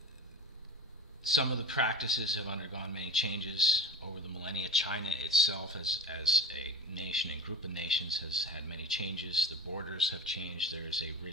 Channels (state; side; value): normal; both; correlation 0.32